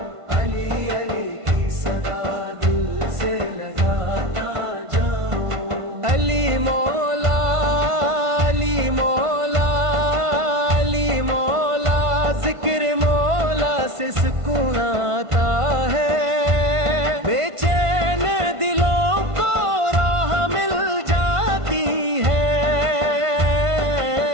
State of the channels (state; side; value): late; left; 1.5 ms